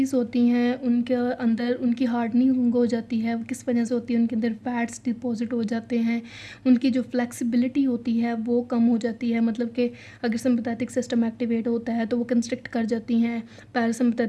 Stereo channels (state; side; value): identical; both; correlation 1.00